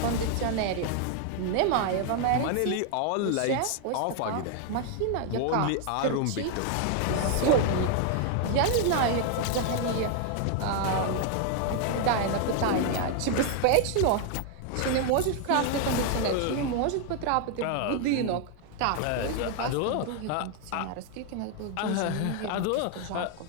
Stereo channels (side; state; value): both; different; correlation 0.00